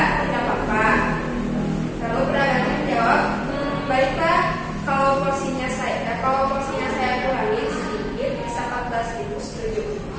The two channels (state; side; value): identical; both; correlation 1.00